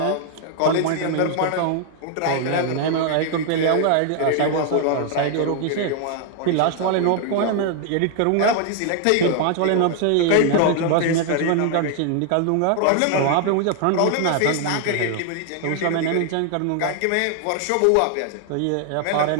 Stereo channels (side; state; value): both; different; correlation 0.00